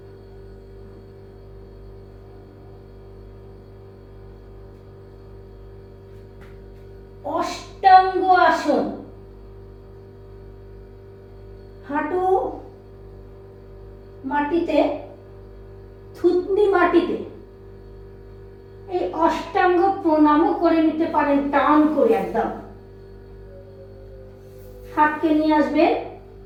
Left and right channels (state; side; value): identical; both; correlation 1.00